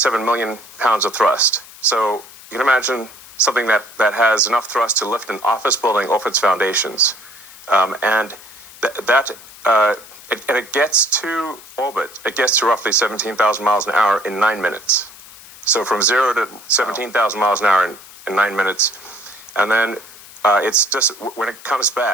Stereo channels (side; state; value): left; noise; hiss, 19 dB below the sound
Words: million pounds of thrust. So you can imagine something that has enough thrust to lift an office building off its foundations, and it gets to orbit. It gets to roughly 17,000 miles an hour in 9 minutes. So from 0 to 17,000 miles an hour in 9 minutes. And then it's just, when it comes